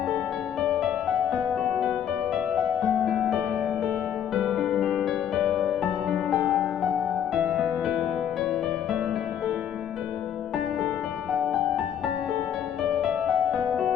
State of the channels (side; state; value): right; quieter; 9.5 dB